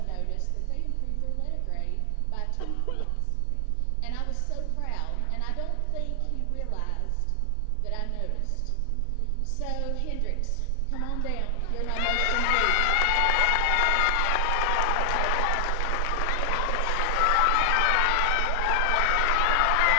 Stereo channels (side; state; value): both; different; correlation 0.00